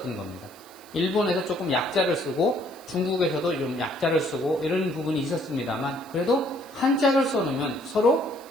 겁니다. 일본에서 조금 약자를 쓰고 중국에서도 좀 약자를 쓰고 이런 부분이 있었습니다만 그래도 한자를 써놓으면 서로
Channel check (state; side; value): noise; right; hiss, 23 dB below the sound